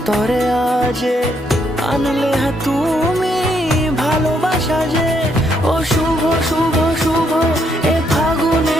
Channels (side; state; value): both; normal; correlation 0.74